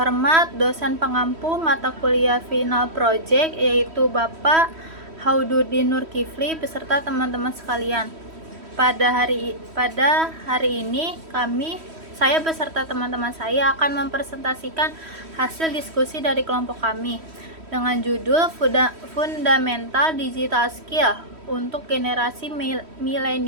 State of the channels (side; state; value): left; late; 3.1 ms